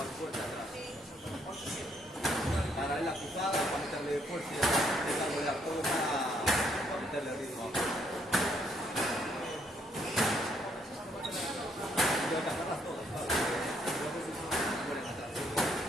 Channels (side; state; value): both; normal; correlation 0.71